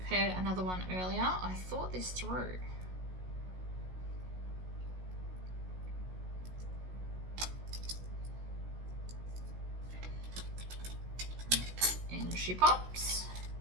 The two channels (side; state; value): left; late; 16 ms